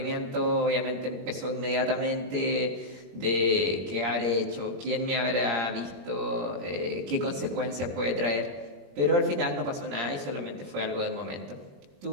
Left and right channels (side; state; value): left; late; 21 ms